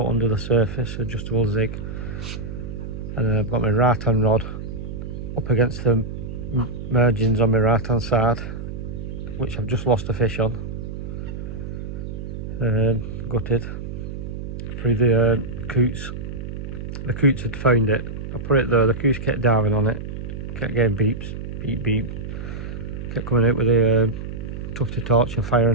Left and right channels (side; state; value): right; noise; hum, 7 dB below the sound